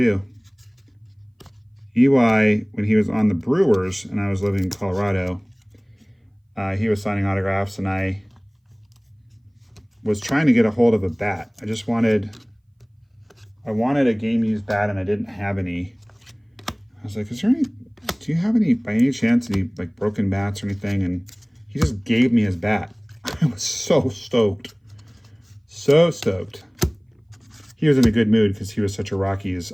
EY, when he was on the Brewers and I was living in Colorado, he was signing autographs, and I was trying to get a hold of a bat. I wanted a game-used bat, and I didn't have any. I was like, do you have any, by any chance, any like broken bats or anything? And he just gave me his bat. I was so stoked. So stoked. He was in a good mood because he was such a Rockies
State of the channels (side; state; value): both; identical; correlation 1.00